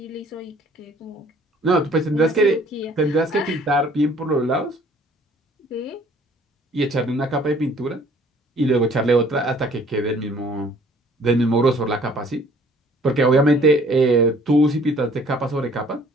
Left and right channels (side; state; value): both; normal; correlation 0.56